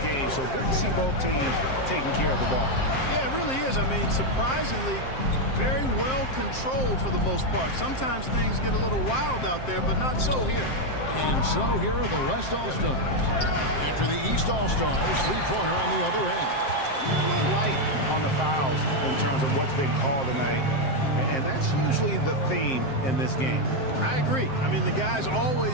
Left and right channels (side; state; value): right; late; 7.6 ms